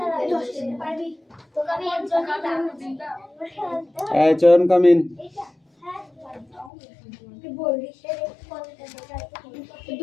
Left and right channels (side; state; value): right; drops out; at 6.7 s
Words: নেই পারবি তোকে আমি একজন চয়ন কামিন। বলবি 10